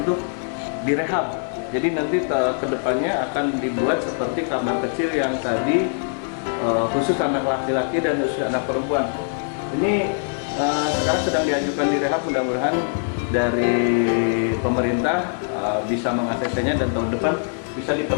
direhab. Jadi nanti kedepannya akan dibuat seperti kamar kecil yang tadi, khusus anak laki-laki dan khusus anak perempuan. Ini sekarang sedang diajukan direhab, mudah-mudahan dari pemerintah bisa mengaksesnya dan tahun depan bisa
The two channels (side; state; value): right; silent; 59 dB below the other